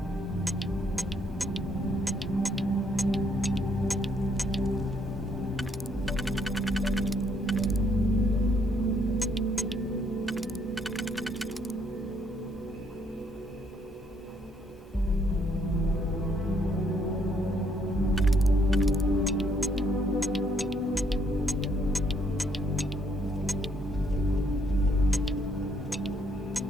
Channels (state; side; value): normal; both; correlation 0.70